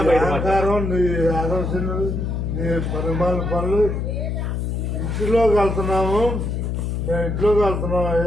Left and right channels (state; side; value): noise; left; hum, 2 dB below the sound